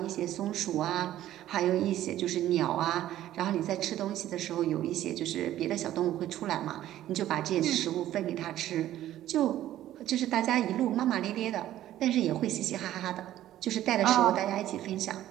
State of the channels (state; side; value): quieter; left; 13.1 dB